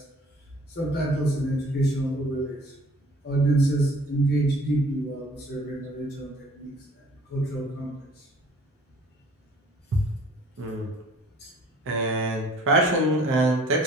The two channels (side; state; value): both; normal; correlation 0.53